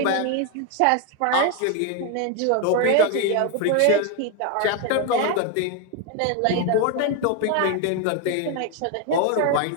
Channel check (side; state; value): both; different; correlation 0.01